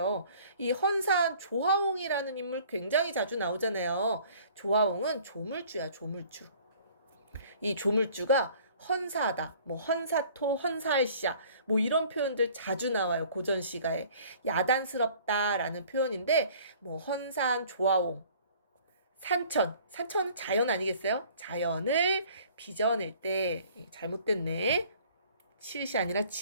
이 헌산 조화홍이라는 인물 굉장히 자주 나오잖아요. 조화홍은 조물주야, 조물주. 이 조물주가 헌사하다, 뭐 헌사토, 헌사할시야, 뭐 이런 표현들 자주 나와요. 고전 시가에. 야단스럽다라는 표현인데, 뭐 헌산 조화홍, 산천은 자연 아니겠어요? 자연을 빚어낼 때, 잘못됐네. 치읓이 아니라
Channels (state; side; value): inverted; both; correlation -0.53